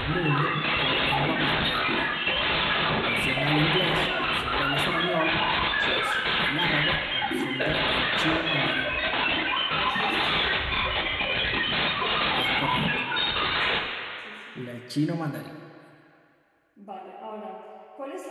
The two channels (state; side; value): identical; both; correlation 1.00